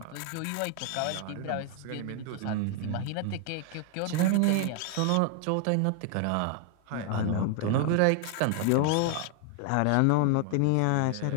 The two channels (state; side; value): different; both; correlation 0.00